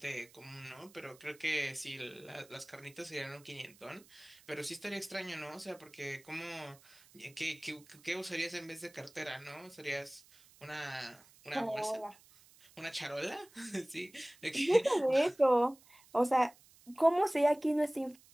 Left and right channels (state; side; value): noise; right; hiss, 26 dB below the sound